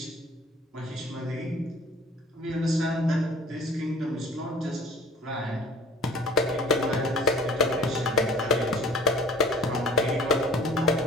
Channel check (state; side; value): normal; both; correlation 0.45